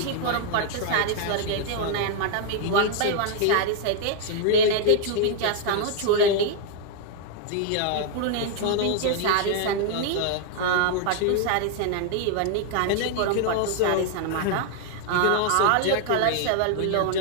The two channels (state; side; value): different; both; correlation 0.00